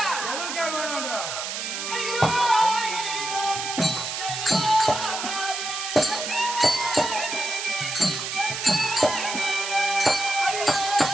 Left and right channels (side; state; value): right; noise; hiss, 4 dB below the sound